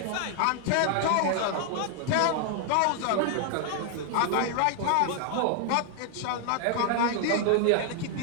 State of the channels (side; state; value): both; different; correlation 0.00